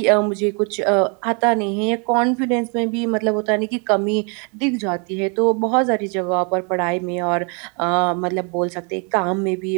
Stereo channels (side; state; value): left; quieter; 35.7 dB